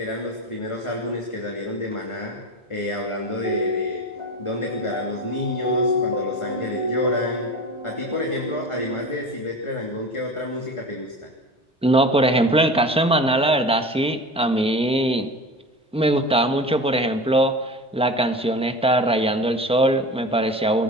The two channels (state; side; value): normal; both; correlation 0.32